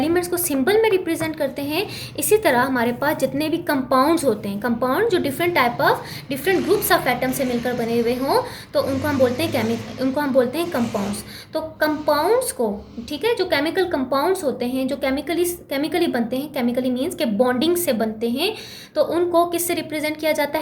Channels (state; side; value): identical; both; correlation 1.00